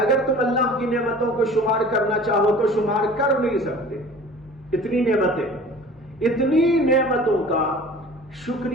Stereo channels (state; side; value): normal; both; correlation 0.44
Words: تم اللہ کی نعمتوں کو شمار کرنا چاہو تو شمار کر نہیں سکتے، اتنی نعمتیں۔ اتنی نعمتوں کا